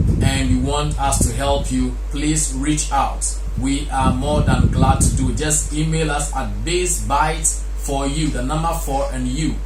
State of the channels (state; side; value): identical; both; correlation 1.00